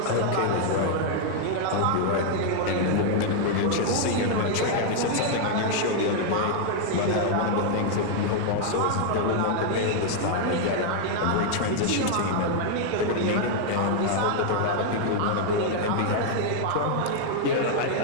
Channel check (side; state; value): both; different; correlation 0.00